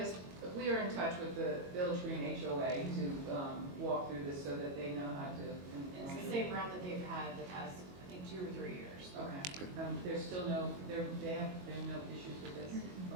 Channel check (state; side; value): late; left; 22 ms